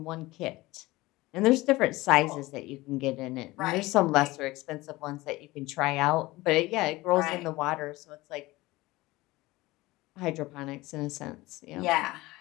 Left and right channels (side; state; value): right; quieter; 19.8 dB